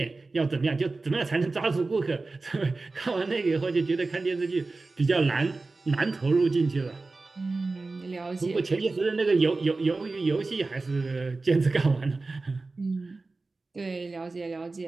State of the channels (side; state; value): left; quieter; 3.6 dB